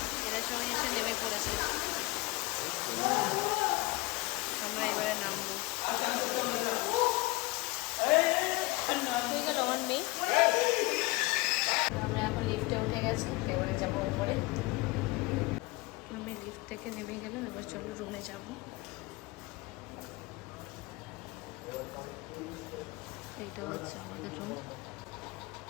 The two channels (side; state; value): right; quieter; 22.3 dB